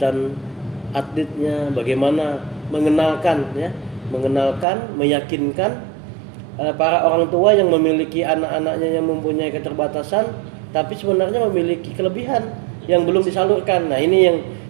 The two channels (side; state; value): left; drops out; at 4.7 s